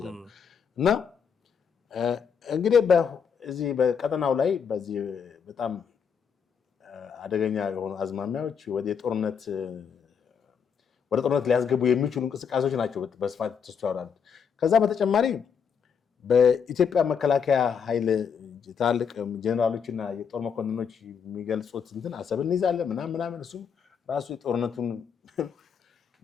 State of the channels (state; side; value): quieter; right; 6.9 dB